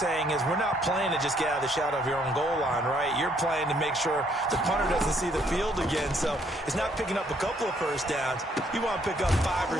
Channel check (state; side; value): normal; both; correlation 0.68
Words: is we're not playing to just get out of the shadow of your own goal line, right? You're playing to make sure the punter doesn't see the field again. So it's not picking up a couple of first downs. You want to pick up 5 or